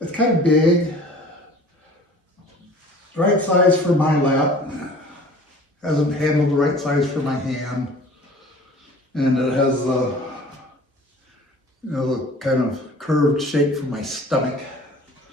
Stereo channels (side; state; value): both; normal; correlation 0.46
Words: kind of big, right size for my lap. Hasn't handled the right size for my hand, and it has the the kind of curved shape for my stomach.